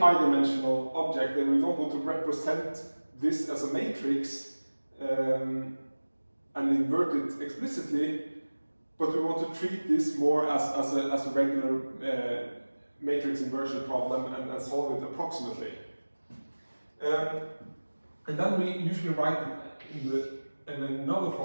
object, and we don't want to represent this as a matrix and invert it explicitly, but we want to treat this more as a regular matrix inversion problem and solve it approximately. And then we usually write in another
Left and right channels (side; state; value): both; inverted; correlation -1.00